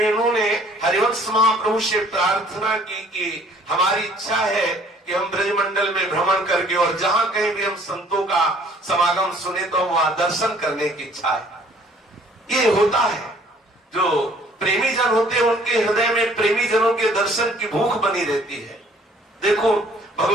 हरिवंश महाप्रभु से प्रार्थना की कि हमारी इच्छा है कि हम ब्रजमंडल में भ्रमण करके और जहां कहीं भी हम संतों का समागम सुने तो वहां दर्शन करने की इच्छा है। ये होता है, जो प्रेमी जन होते हैं उनके हृदय में प्रेमी जनों के दर्शन की भूख बनी रहती है। देखो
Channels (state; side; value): normal; both; correlation 0.57